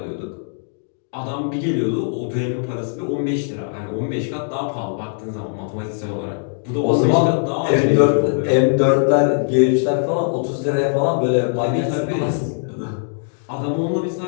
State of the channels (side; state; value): right; silent; digital silence